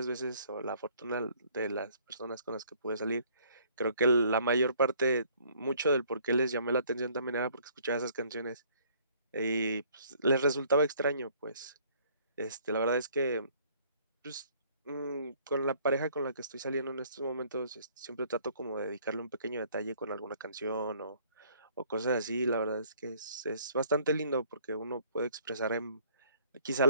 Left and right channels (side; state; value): both; inverted; correlation -0.59